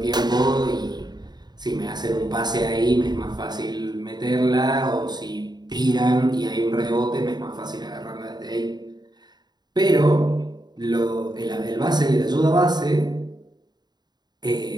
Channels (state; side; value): late; left; 0.20 ms